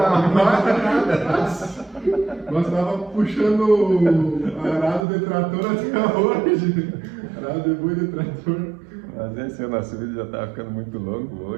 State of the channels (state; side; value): drops out; left; at 5.0 s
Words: nós tava puxando arado de trator até hoje. Arado de boi de trator. Mas esse o nosso vídeo já está ficando muito longo